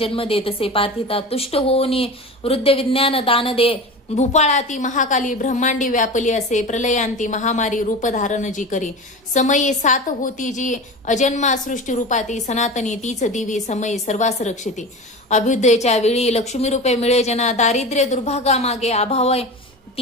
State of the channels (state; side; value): normal; both; correlation 0.30